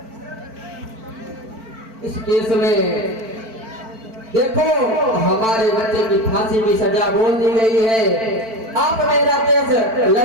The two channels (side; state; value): left; late; 4.5 ms